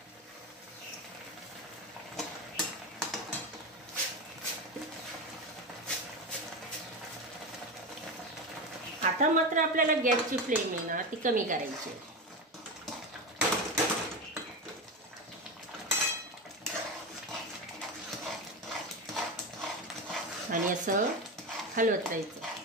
आता मात्र आपल्याला गॅसची फ्लेम आहे ना ती कमी करायची. आणि असं हलवत राहायचं.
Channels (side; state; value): both; normal; correlation 0.20